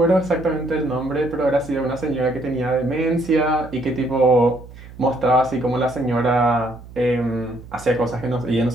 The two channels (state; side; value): noise; right; hum, 18 dB below the sound